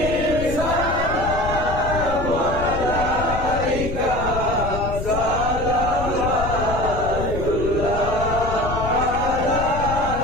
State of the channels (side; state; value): left; noise; rumble, 6 dB below the sound